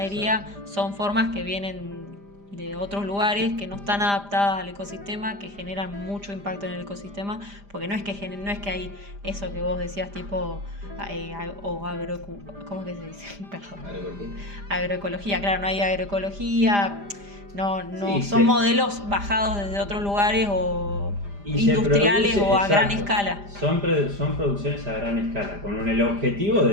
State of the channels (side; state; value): left; late; 5.0 ms